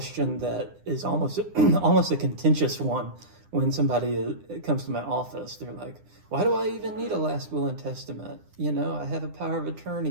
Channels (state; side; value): late; left; 9.9 ms